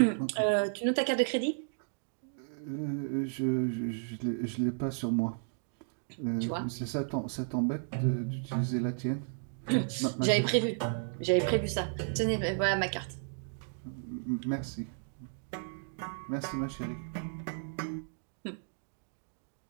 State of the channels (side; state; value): left; silent; digital silence